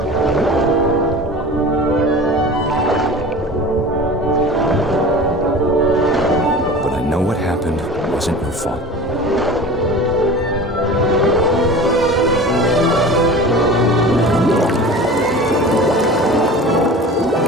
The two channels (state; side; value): normal; both; correlation 0.37